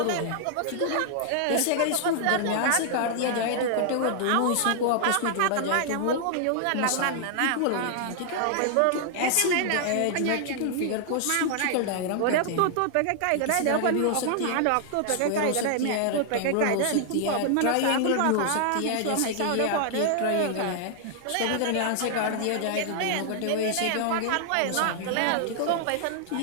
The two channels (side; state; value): both; different; correlation 0.00